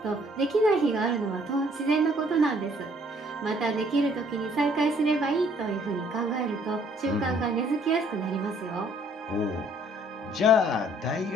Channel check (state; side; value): normal; both; correlation 0.62